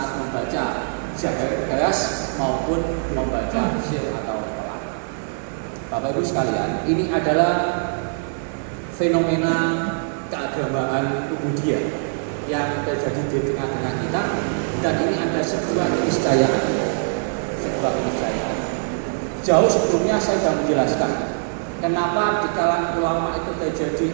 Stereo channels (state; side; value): silent; left; digital silence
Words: membaca jahar keras maupun membaca sir atau pelan. Bapak Ibu sekalian, ini adalah fenomena keagamaan Ubudiyah yang terjadi di tengah-tengah kita, dan ini ada sebuah keniscayaan. Jauh sebelumnya saya sudah menjelaskan kenapa di kalangan ulama itu terjadi